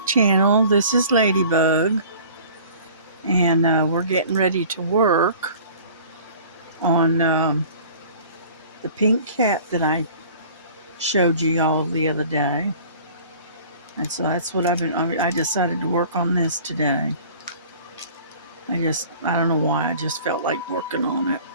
This is Ladybug, and we're getting ready to work on the pink cat that I showed you all the other day. And so that's what I decided to work on this today. I don't know why, I just felt like working on it.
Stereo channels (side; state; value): both; inverted; correlation -0.47